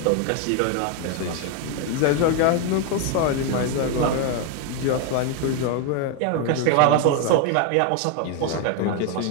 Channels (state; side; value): different; both; correlation 0.01